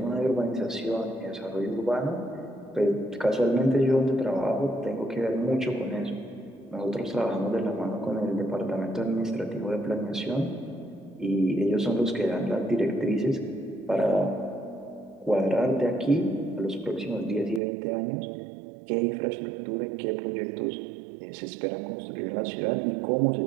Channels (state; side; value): drops out; left; at 17.6 s